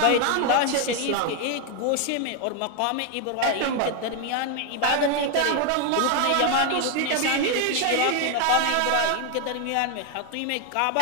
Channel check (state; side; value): different; both; correlation 0.01